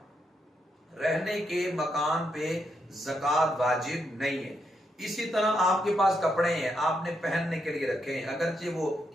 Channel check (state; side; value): normal; both; correlation 0.80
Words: رہنے کے مکان پہ زکوٰۃ واجب نہیں ہے۔ اسی طرح آپ کے پاس کپڑے ہیں، آپ نے پہننے کے لیے رکھے ہیں، اگرچہ وہ